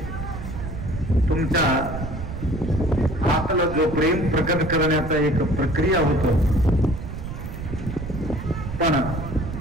तुमच्या आतलं जो प्रेम प्रकट करण्याचा एक प्रक्रिया होतो. पण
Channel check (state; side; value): noise; right; rumble, 7 dB below the sound